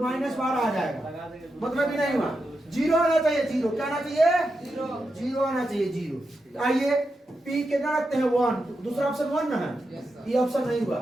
12 आ जाएगा, मतलब ही नहीं हुआ। 0 आना चाहिए, 0 क्या आना चाहिए? 0 आना चाहिए, 0। आइए पी कितना रखते हैं? 1, दूसरा ऑप्शन 1 ना है, ये ऑप्शन नहीं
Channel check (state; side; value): normal; both; correlation 0.87